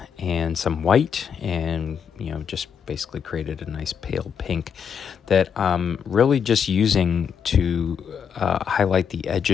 and some white, and just basically created a nice pale pink that I'm really just using to highlight the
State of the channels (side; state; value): right; quieter; 7.3 dB